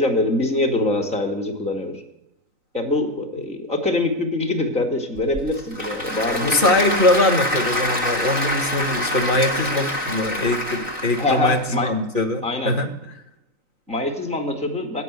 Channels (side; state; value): left; late; 3.9 ms